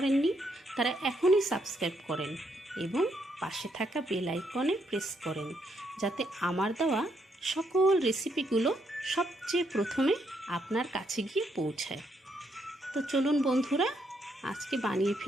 তারা এখনই সাবস্ক্রাইব করেন এবং পাশে থাকা বেল আইকনে প্রেস করেন, যাতে আমার দেওয়া সকল রেসিপিগুলো সবচেয়ে প্রথমে আপনার কাছে গিয়ে পৌঁছায়। তো চলুন বন্ধুরা, আজকে বানিয়ে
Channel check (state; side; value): normal; both; correlation 0.75